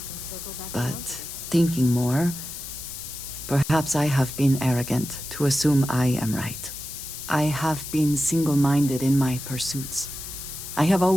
But thinking more, perhaps I have been arrogant to assume I am right. I have been single-minded in my pursuits. I have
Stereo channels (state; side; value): noise; left; hiss, 9 dB below the sound